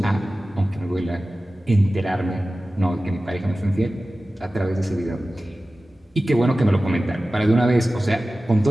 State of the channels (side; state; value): both; normal; correlation 0.96